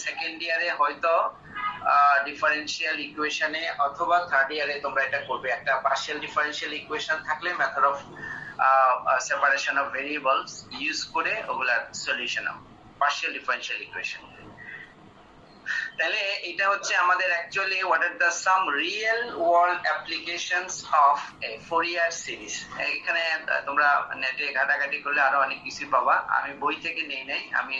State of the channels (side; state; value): both; identical; correlation 1.00